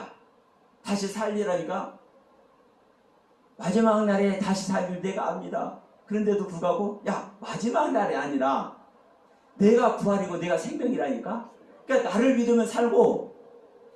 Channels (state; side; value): identical; both; correlation 1.00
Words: 다시 살리라니까 마지막 날에 다시 살릴 내가 압니다. 그런데도 불구하고, 야, 마지막 날이 아니라 내가 부활이고 내가 생명이라니까. 그러니까 나를 믿으면 살고,